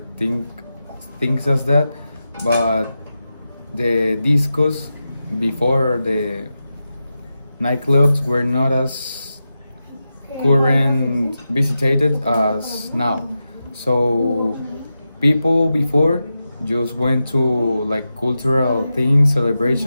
things as that, but the discos before the nightclubs were not as current visited as now. So people before just went to like cultural things,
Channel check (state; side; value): inverted; both; correlation -0.91